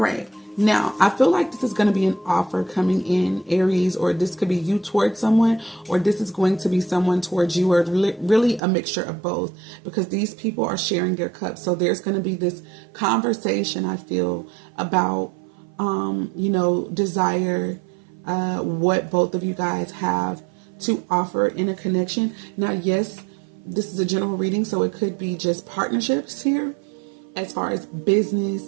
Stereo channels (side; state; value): left; drops out; at 8.6 s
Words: Now, I feel like this is going to be an offer coming in, Aries, or this could be you towards someone, or this is going to be someone towards you, or really a mixture of both, because these people are sharing their cups. So there's going to be this conversation, I feel, about desire, what both of you guys have to offer in a connection. Now, yes, this is a general reading, so it could be just partnerships here as far as business